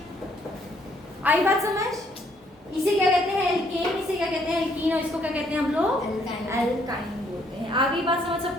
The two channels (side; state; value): both; normal; correlation 0.68